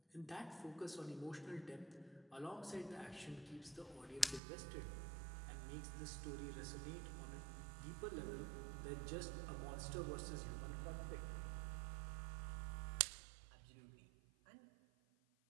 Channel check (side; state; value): left; drops out; at 4.4 s